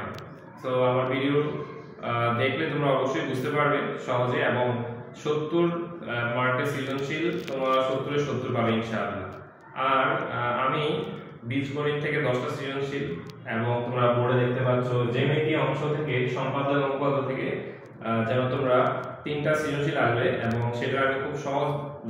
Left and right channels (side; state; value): both; identical; correlation 1.00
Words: তো আমার ভিডিও দেখলে তোমরা অবশ্যই বুঝতে পারবে সহজে, এবং 70 মার্কের সৃজনশীল তোমরা 70-এ 70 পাবে ইনশাআল্লাহ। আর আমি বীজগণিত থেকে 10টা সৃজনশীল, এবং তোমরা বোর্ডে দেখতে পাচ্ছ জ্যামিতি অংশ থেকে সম্পাদক অনুপাত থেকে যেন তোমরা 3টা সৃজনশীল আসবে, এবং সেটা আমি খুব সহজ